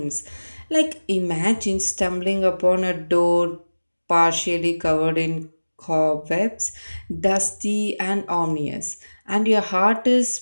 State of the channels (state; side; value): inverted; both; correlation -1.00